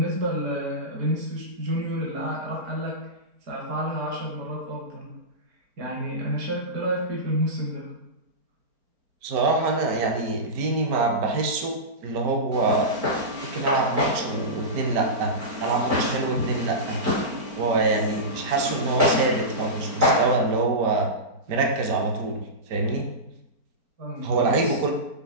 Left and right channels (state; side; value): late; left; 4.4 ms